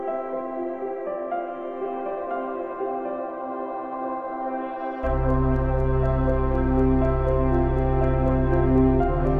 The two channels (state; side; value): identical; both; correlation 1.00